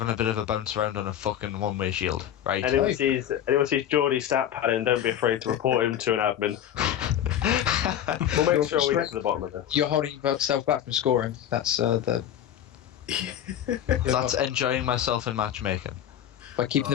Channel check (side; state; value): right; quieter; 10.5 dB